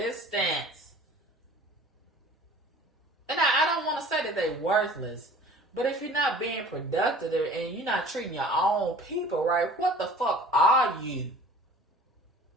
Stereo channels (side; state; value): both; normal; correlation 0.47